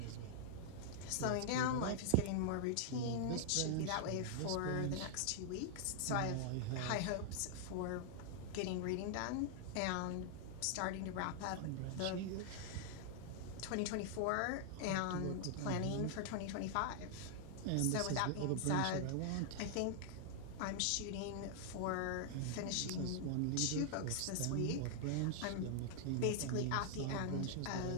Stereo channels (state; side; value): different; both; correlation 0.00